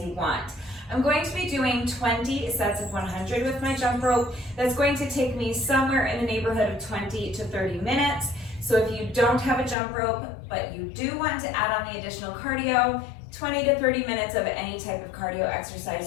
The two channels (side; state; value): right; drops out; at 9.8 s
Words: you want. I'm going to be doing 20 sets of 100 with my jump rope. That's going to take me somewhere in the neighborhood of 20 to 30 minutes. So if you don't have a jump rope, but you do want to add on the additional cardio, 20 to 30 minutes of any type of cardio